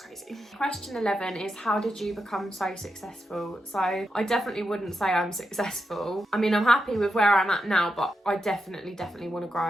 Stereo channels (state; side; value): normal; both; correlation 0.86